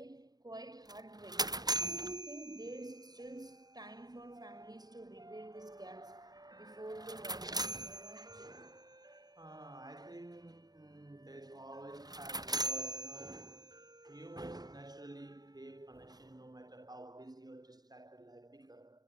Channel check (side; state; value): left; late; 0.19 ms